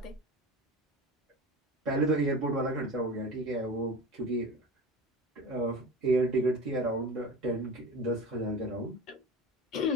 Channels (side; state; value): both; normal; correlation 0.31